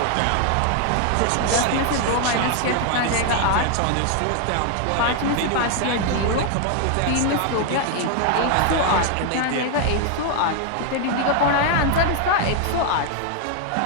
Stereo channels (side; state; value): both; different; correlation 0.00